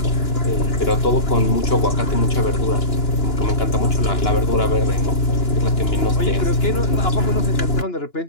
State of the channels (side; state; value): right; late; 2.9 ms